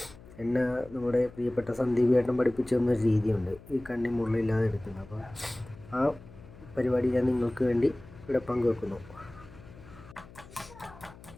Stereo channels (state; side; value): noise; left; hum, 20 dB below the sound